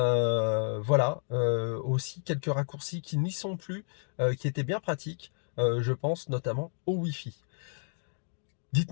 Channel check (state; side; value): silent; right; digital silence